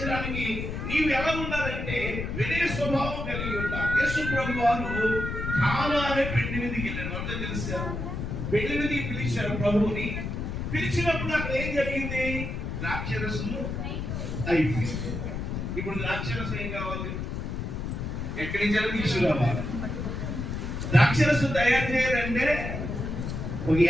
నీవు ఎలా ఉండాలంటే వినయ స్వభావం కలిగి ఉంటావు. యేసు ప్రభు వారు కానా అనే పెళ్లి మీదకి వెళ్ళారు. అందరూ తెలుస్తారు. పెళ్లి మీదకి పిలిచారు ప్రభువుని. పిలిచినప్పుడు అక్కడ ఏం జరిగింది? ద్రాక్షరసము అయిపోయింది. ఇప్పుడు ద్రాక్షరసం ఏం కావాలి? ఎక్కడి నుంచి తీసుకురావాలి? ద్రాక్షరసం తయారు చేయాలంటే ఒక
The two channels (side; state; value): left; noise; rumble, 4 dB below the sound